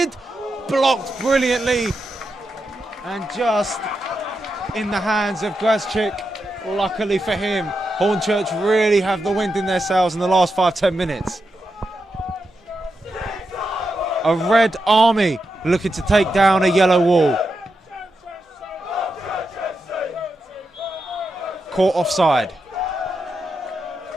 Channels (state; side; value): normal; both; correlation 0.87